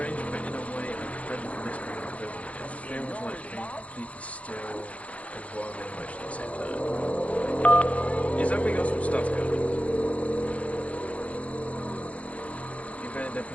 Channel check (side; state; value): right; late; 0.065 ms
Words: but in a way, I'm ready for this kind of prison. It feels like being completely still and wild and emotional at the same time. Is that we got some stuff going? You're very